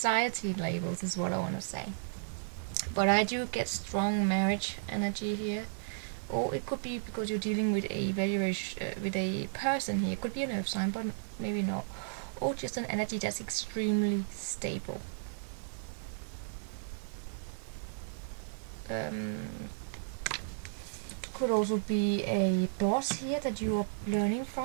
labels is what I want to say. But I do get strong marriage energy here. Or it could be because you're dealing with a with a person here. It could be an earth sign, but maybe not. Or just an energy that's extremely stable. Could also be a boss here that you are learning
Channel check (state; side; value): silent; left; digital silence